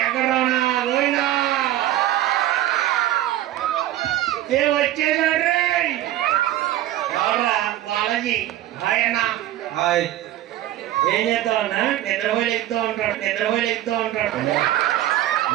వచ్చేసాడు ఎవరా? బాలాజీ. హాయ్ అన్న. హాయ్. ఏం చేస్తావన్నా? నిద్రపోయి ఎక్కుతూ ఉంటాడు.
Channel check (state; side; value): quieter; left; 13.7 dB